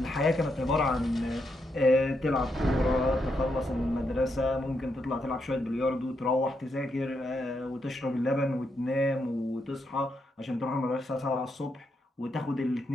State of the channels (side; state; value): both; normal; correlation 0.81